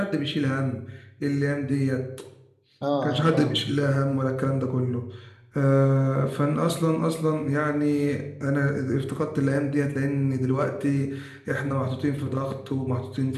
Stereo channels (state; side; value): identical; both; correlation 1.00